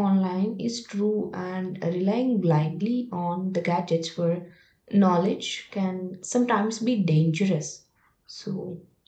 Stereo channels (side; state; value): both; identical; correlation 1.00